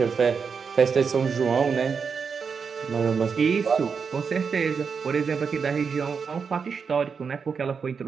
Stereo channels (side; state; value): left; quieter; 5.8 dB